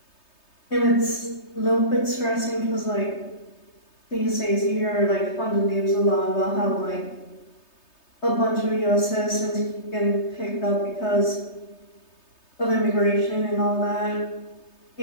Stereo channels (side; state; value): right; late; 3.3 ms